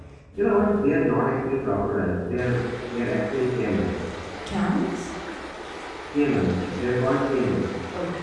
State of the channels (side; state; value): both; identical; correlation 1.00